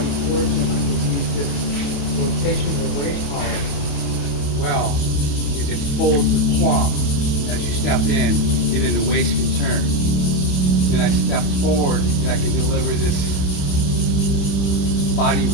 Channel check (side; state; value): right; late; 28 ms